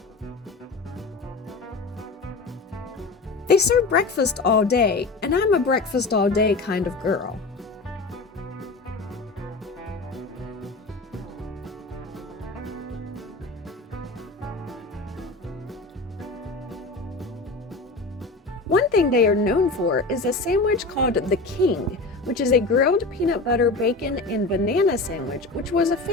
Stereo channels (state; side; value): quieter; right; 3.5 dB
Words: They serve breakfast all day, and I'm a breakfast all day kind of girl. One thing they are known for is a sandwich called the King, which is a grilled peanut butter, bacon, and banana sandwich, which was a